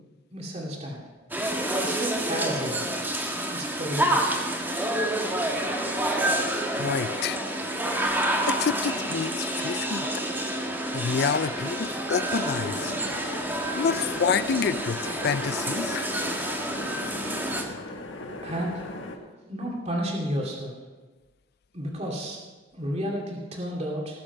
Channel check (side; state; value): both; normal; correlation 0.32